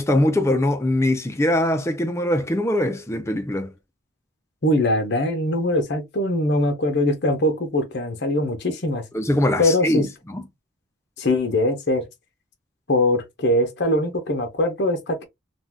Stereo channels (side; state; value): both; normal; correlation 0.35